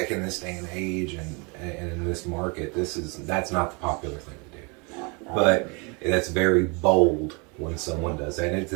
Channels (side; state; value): left; quieter; 31.5 dB